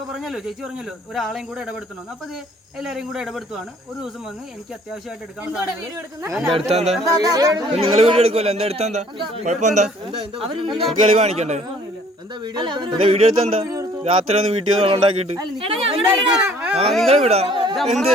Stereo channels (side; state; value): both; normal; correlation 0.57